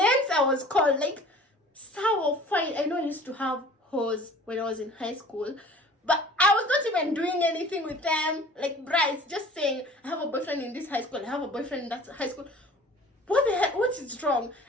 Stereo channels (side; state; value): both; normal; correlation 0.47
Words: I was called, like, sour fine. I know I used to have hoes when I was in high school, but I was not even doing anything with them. Like, Bryce, just saying, I have a boyfriend in this high school, I have a boyfriend in that high school. What the heck? What is wrong?